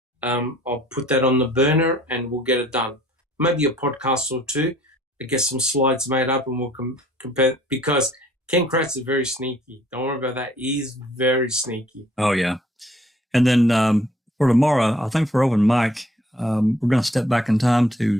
I'll put that on the burner and we'll get it done. Maybe a podcast or two to get some slides made up, and we'll compare, because Ken Kratz is very sneaky. Don't worry about that. He's very sneaky. Oh, yeah. And then for tomorrow, I think for open mic, we're going to step back in time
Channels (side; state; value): both; normal; correlation 0.59